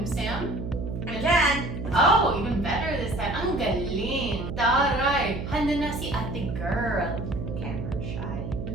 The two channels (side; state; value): right; noise; hum, 6 dB below the sound